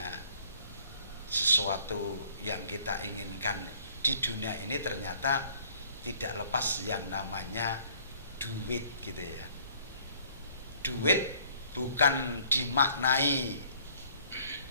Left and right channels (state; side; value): inverted; both; correlation -0.57